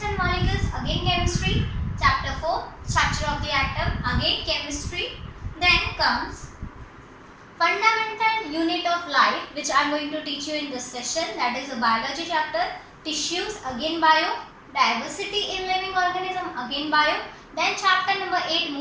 and molecules, again chemistry. Chapter 4 structure of the atom, again chemistry. Then comes fundamental unit of life, which I am going to teach you in this session, that is a biology chapter. Tissues, again bio. Diversity in living organism, again bio. Then chapter number 8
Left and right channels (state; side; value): identical; both; correlation 1.00